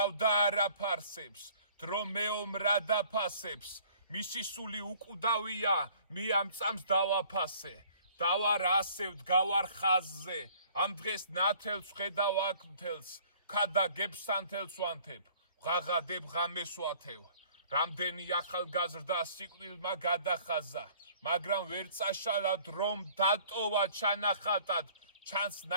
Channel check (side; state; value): both; inverted; correlation -0.54